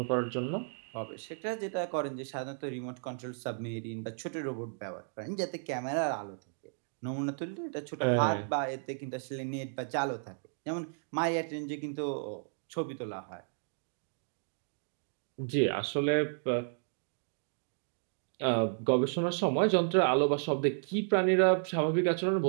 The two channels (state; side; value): silent; left; digital silence